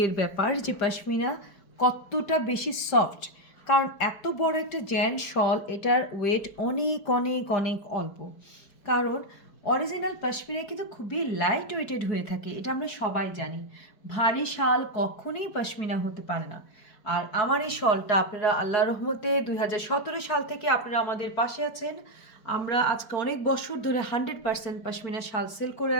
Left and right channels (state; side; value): late; right; 4.7 ms